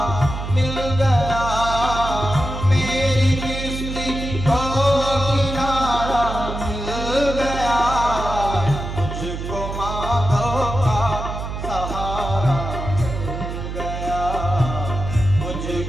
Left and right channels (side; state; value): right; noise; hum, 6 dB below the sound